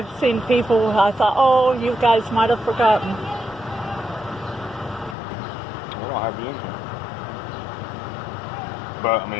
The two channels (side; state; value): right; drops out; at 5.2 s